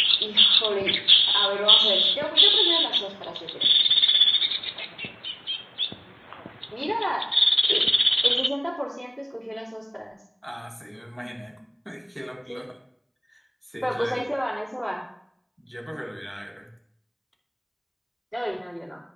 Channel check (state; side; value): identical; both; correlation 1.00